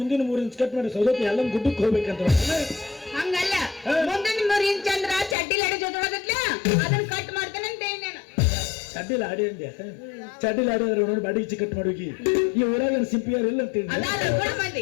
3 ಇಂಚ್ ಕಟ್ ಮಾಡಿ ಸೌದತ್ತಿ ಎಲ್ಲ ಗುಡ್ಡಕ್ಕೆ ಹೋಗ್ಬೇಕಂತ. ಹಂಗಲ್ಲ, ಮುಂದಿನ 3 ಇಂಚ್ ಅಂದ್ರ ಚಡ್ಡಿಲ್ ಅಡಿ ಜೊತೆ ಅದನ್ನ ಕಟ್ ಮಾಡ್ತೇನೆ ಅಂತ ಹೇಳಿ ನಾನು. ಚಡ್ಡಿಲ್ ಆಡಿ ಅಂದ್ಯ? ಚಡ್ಡಿಲ್ ಆಡಿ ಅಂದ್ರೆ ನೋಡಿ ಬಾಡಿ ಇಚ್ಚಿ ಕಟ್ ಮಾಡೋಗಿ. ಈ ಊರಾಗ ಸಿಂಪಿಯರ್ ಇಲ್ಲ ಅಂತ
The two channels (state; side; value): drops out; right; at 5.4 s